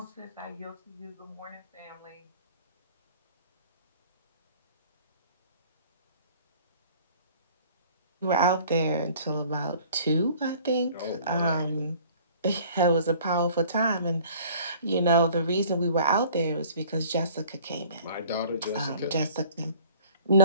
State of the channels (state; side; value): inverted; both; correlation -0.50